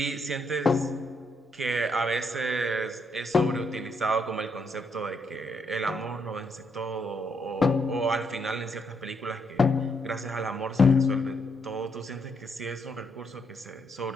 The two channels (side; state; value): both; normal; correlation 0.76